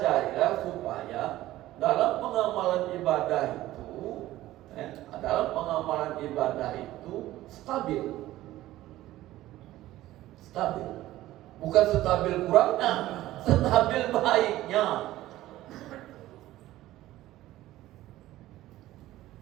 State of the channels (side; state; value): left; quieter; 15.5 dB